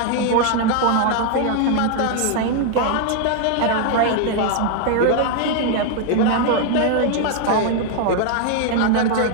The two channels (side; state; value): both; different; correlation 0.00